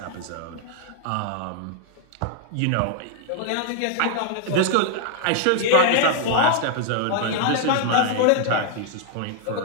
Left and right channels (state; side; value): different; both; correlation -0.01